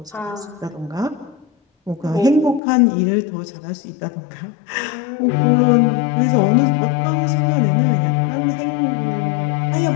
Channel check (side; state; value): right; drops out; at 2.6 s